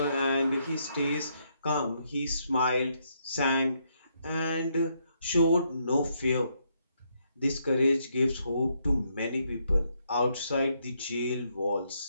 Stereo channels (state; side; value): inverted; both; correlation -0.76